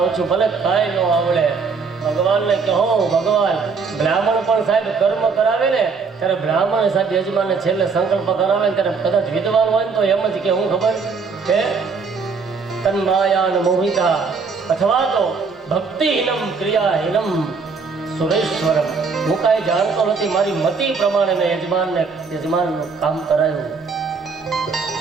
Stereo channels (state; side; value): quieter; left; 4.9 dB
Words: છું, ભલે કાંઈ ન આવડે. ભગવાનને કહો, ભગવાન બ્રાહ્મણ પણ સાહેબ કર્મ કરાવે ને ત્યારે બ્રાહ્મણ સાહેબ યજમાનને છેલ્લે સંકલ્પ કરાવે ને ત્યારે કદાચ વિદ્વાન હોય ને તો એમ જ કે હું ખબર કે તન્માયાન મોહિતા અથવા તો ભક્તિહીનમ ક્રિયાહીનમ સુરેશ્વરમ. હું કાંઈ જાણતો નથી, મારી મતિ પ્રમાણે મેં યજમાનનું કામ કરાયું,